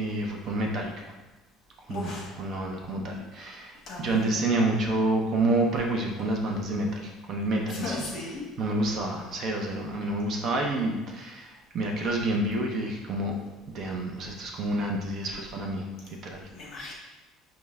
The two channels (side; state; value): both; normal; correlation 0.48